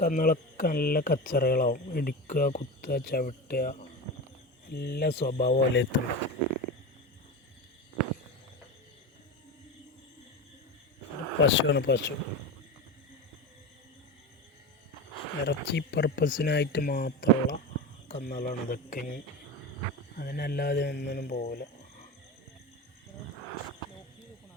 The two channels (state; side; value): normal; both; correlation 0.24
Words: കന്നുകളൊക്കെ നല്ല കച്ചറകളാവും. ഇടിക്കുക, കുത്തുക, ചവിട്ടുക, എല്ലാ സ്വഭാവം വലയത്തുണ്ട്. പശുവാണ്. പശു ഇറച്ചി പർപ്പസിനായിട്ട് മാത്രമുള്ള കന്നുകളാണ് ഇതൊക്കെ. അതിനല്ലാതെ ഒന്നിനും പോകില്ല.